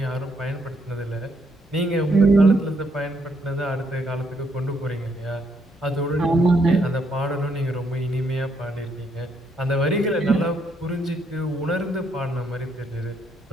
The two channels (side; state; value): both; normal; correlation 0.73